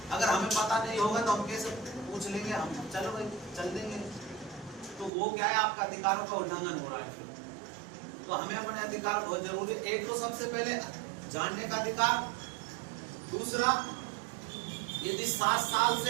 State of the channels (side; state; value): left; drops out; at 5.1 s